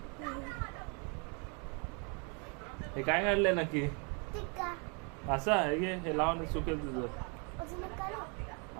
हे काय काढलंय नक्की? असं आहे की हे लावून सुकेल तुझं.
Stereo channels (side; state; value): left; quieter; 35.1 dB